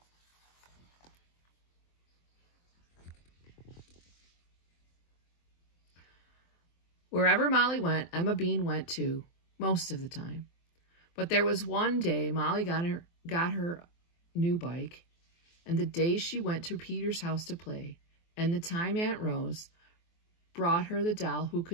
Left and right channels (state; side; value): late; right; 23 ms